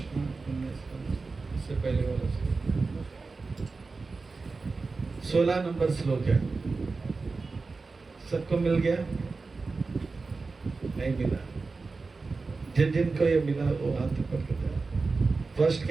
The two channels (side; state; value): left; quieter; 4.1 dB